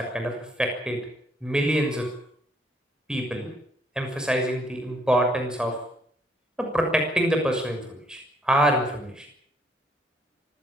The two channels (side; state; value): both; normal; correlation 0.67